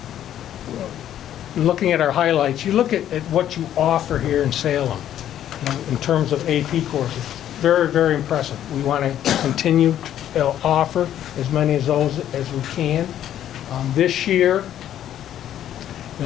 Looking at our highlights, you look at what you offer here in Salem, in terms of AP courses. Very, very impressive. We want to continue to offer as many of those as we can. This year,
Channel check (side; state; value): right; quieter; 11.1 dB